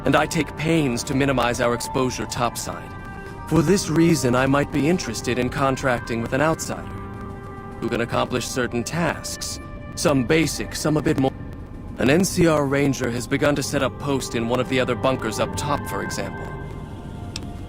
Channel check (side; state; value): both; identical; correlation 1.00